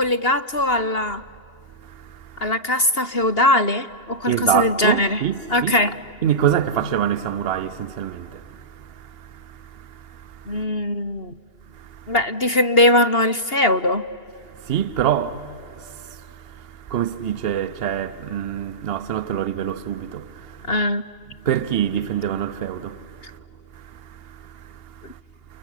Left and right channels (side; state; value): right; late; 2.8 ms